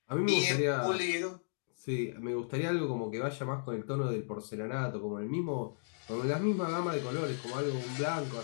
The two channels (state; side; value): silent; right; digital silence